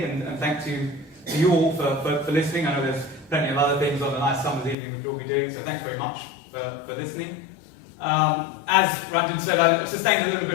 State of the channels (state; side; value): drops out; right; at 4.8 s